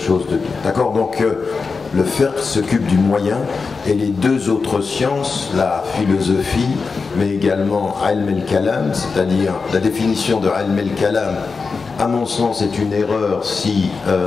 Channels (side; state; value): right; quieter; 4.7 dB